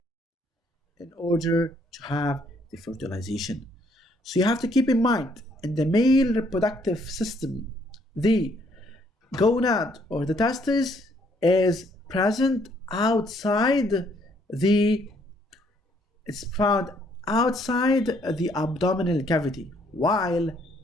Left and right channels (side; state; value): both; normal; correlation 0.67